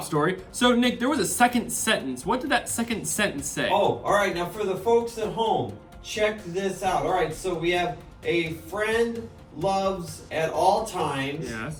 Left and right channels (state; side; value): identical; both; correlation 1.00